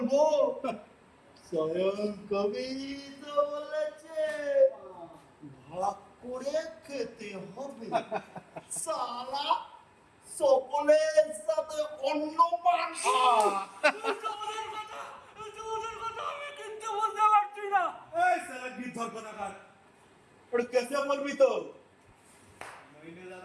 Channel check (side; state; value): both; identical; correlation 1.00